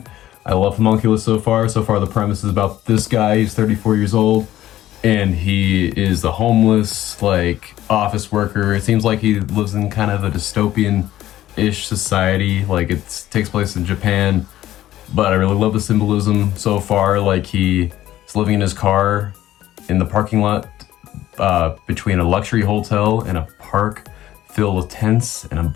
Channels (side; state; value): right; quieter; 13.7 dB